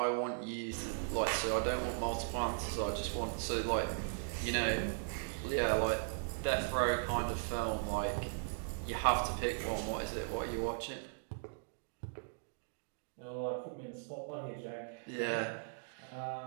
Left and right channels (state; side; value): silent; left; digital silence